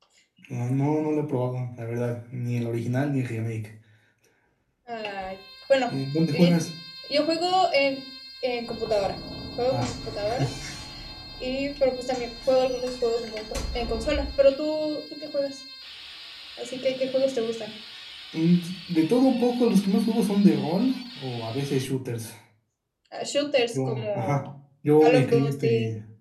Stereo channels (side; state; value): both; identical; correlation 1.00